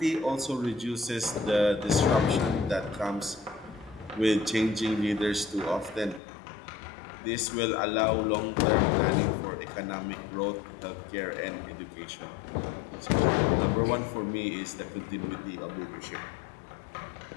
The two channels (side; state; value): right; drops out; at 6.2 s